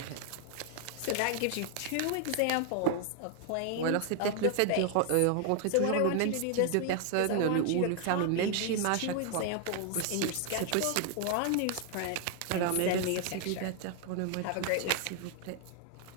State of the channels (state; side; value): different; both; correlation 0.00